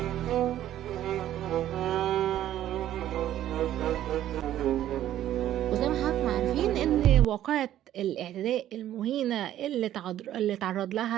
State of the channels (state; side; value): quieter; left; 12.3 dB